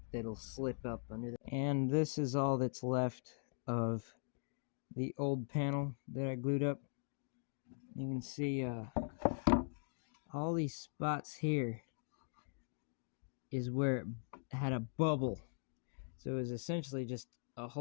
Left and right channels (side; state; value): right; silent; digital silence